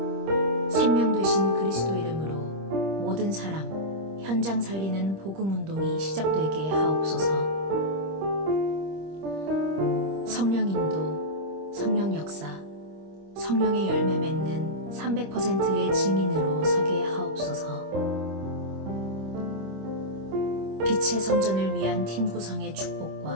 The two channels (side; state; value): left; late; 26 ms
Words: 생명 되신 그리스도 이름으로 모든 사람, 현장 살리는 복음 운동이 시작되게 하옵소서. 성령 인도, 성령 역사, 성령의 열매 맺는 300%의 증인으로 서게 하옵소서. 빛의 성전을 위한 팀 구성의